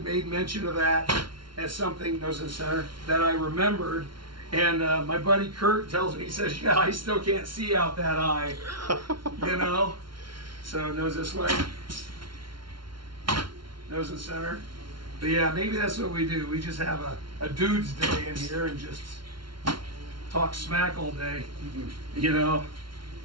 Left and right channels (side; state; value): left; late; 0.73 ms